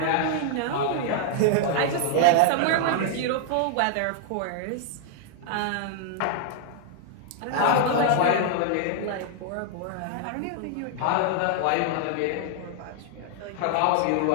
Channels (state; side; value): different; both; correlation -0.01